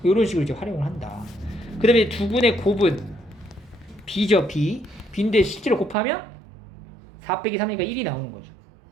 이런 식으로 이제 활용을 한다. 그 다음에 두 근의 곱은 B죠. B인데 실제로 곱하면 4 빼기 3이니까 1이 나오는 거죠.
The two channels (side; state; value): left; drops out; at 6.0 s